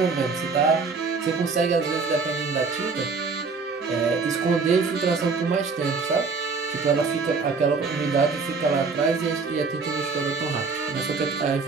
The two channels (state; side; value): quieter; left; 4.6 dB